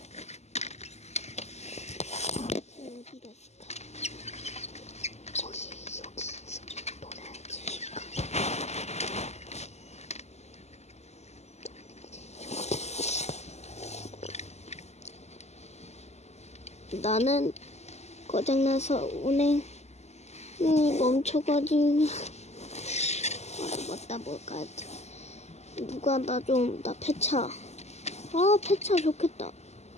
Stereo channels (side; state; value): right; late; 0.32 ms